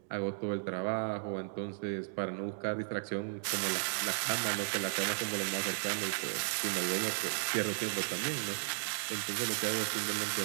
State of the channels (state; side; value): silent; left; digital silence